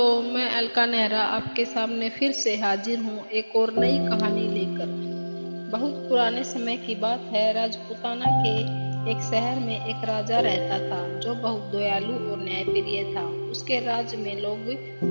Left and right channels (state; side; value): inverted; both; correlation -1.00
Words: मैं अलका नेहरा आपके सामने फिर से हाजिर हूँ एक और नई कहानी लेकर। बहुत पुराने समय की बात है। राजपूताना के एक शहर में एक राजा रहता था जो बहुत दयालु और न्यायप्रिय था। उसके राज्य में लोग